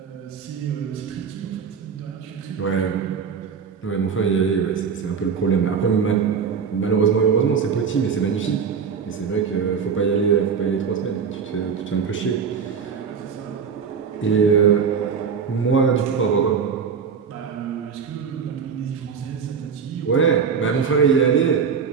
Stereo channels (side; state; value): left; quieter; 6.5 dB